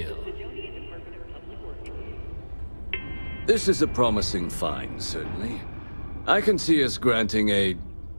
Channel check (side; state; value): both; inverted; correlation -1.00